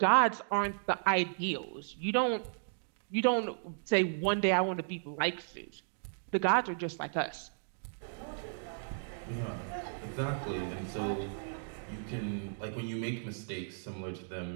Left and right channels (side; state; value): left; silent; digital silence